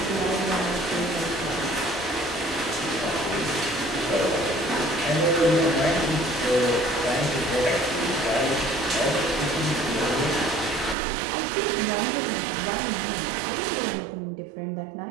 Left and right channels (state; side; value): drops out; left; at 11.0 s